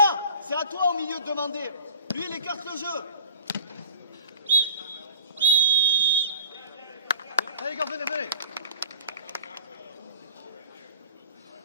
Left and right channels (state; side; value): inverted; both; correlation -0.43